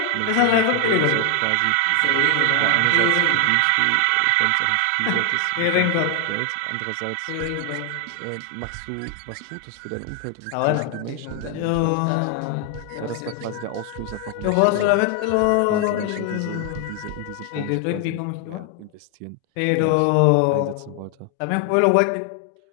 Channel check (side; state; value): both; different; correlation 0.01